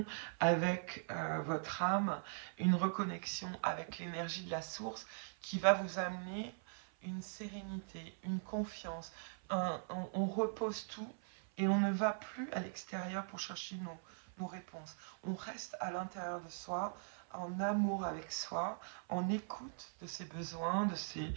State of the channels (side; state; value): left; silent; 50 dB below the other